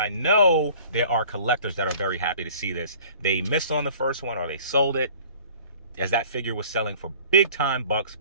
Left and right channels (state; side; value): inverted; both; correlation -0.49